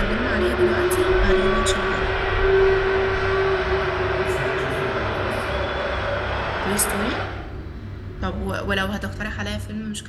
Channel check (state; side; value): identical; both; correlation 1.00